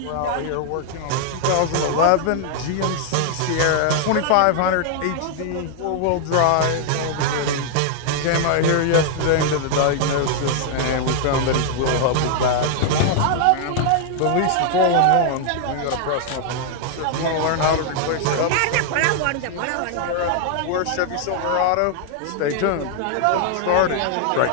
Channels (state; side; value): different; both; correlation 0.00